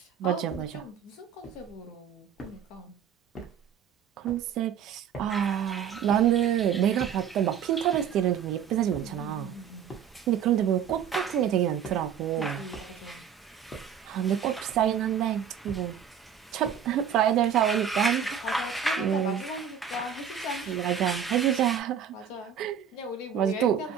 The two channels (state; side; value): quieter; left; 8.2 dB